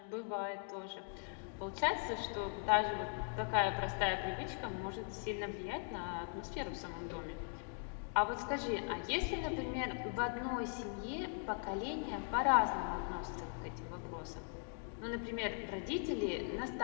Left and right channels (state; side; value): silent; right; 51 dB below the other